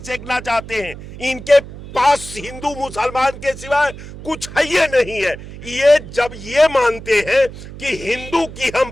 सेकना चाहते हैं। इनके पास हिंदू मुसलमान के सिवाय कुछ है ये नहीं है। ये जब ये मानते हैं कि हिंदू की हम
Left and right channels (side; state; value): right; noise; hum, 14 dB below the sound